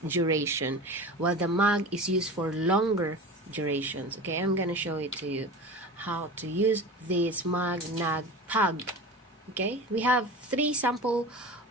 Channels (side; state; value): both; normal; correlation 0.33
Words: duration, while the mag is used for longer durations. Okay, I'm gonna show it to you how to use this mag, nag, pag. Okay, we have three sample